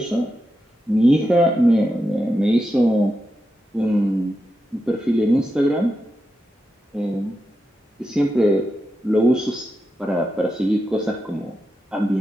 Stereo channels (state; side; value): normal; both; correlation 0.88